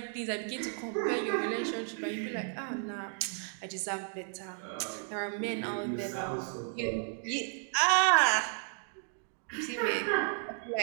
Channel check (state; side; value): silent; left; 56 dB below the other